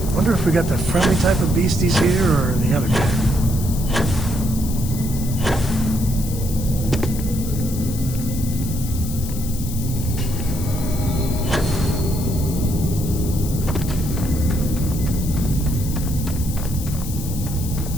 Wonder if we got the friendly type of beasties here or the other kind.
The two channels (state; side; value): noise; left; hiss, 11 dB below the sound